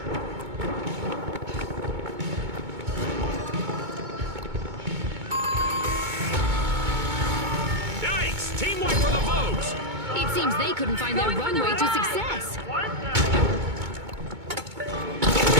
Yikes! Team wipe for the Vogues. It seems they couldn't find their Going for the runway to ride. success.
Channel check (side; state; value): left; late; 2.2 ms